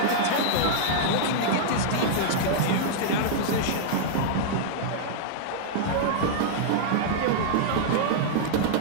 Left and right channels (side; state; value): both; different; correlation -0.02